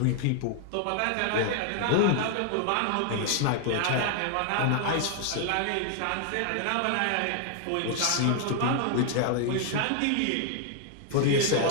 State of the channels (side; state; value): both; different; correlation 0.00